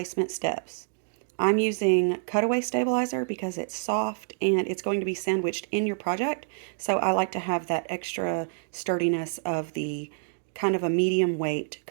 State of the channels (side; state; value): left; silent; digital silence